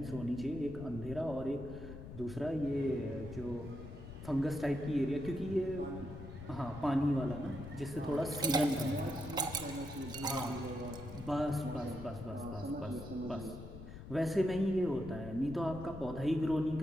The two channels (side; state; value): left; noise; rumble, 11 dB below the sound